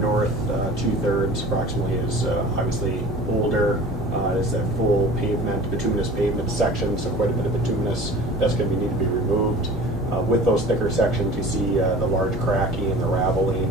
2/3 approximately is obviously older. It's that full pavement, bituminous pavement section, so quite a bit of bituminous that's going to need to be removed. With those thicker sections, you see the large cracking and the raveling,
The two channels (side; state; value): both; normal; correlation 0.42